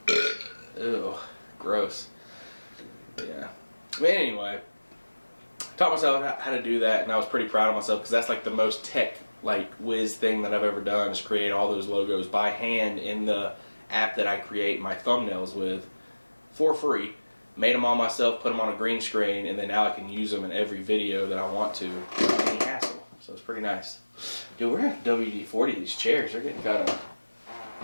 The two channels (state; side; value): inverted; both; correlation -1.00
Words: Ew, gross. Yeah. But anyway, taught myself how to do that, and I was pretty proud of myself because that's like the most tech like whiz thing that I've ever done is create all those logos by hand in the app that I create my thumbnails with for free. Made them all myself, put them on a green screen, and then now I can use them in every video that I want to without any hassle. So it's pretty nice. Dude, we're at WD-40 these chairs. They're getting kind